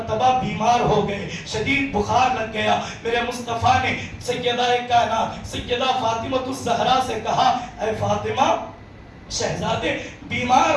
بیمار ہو گئے، شدید بخار لگ گیا۔ میرے مصطفیٰ نے سیدہ کائنات سیدہ فاطمہ الزہرا سے کہا اے فاطمہ شہزادے بیمار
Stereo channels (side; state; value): both; identical; correlation 1.00